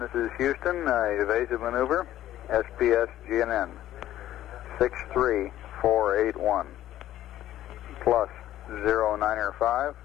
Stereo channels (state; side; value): quieter; right; 13.2 dB